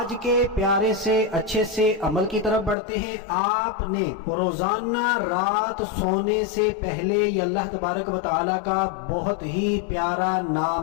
کے پیارے سے اچھے سے عمل کی طرف بڑھتے ہیں۔ آپ نے روزانہ رات سونے سے پہلے یہ اللہ تبارک و تعالیٰ کا بہت ہی پیارا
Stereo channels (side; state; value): right; drops out; at 2.8 s